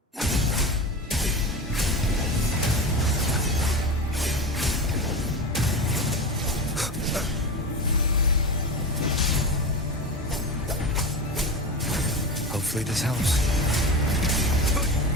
Hopefully this helps.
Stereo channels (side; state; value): both; normal; correlation 0.24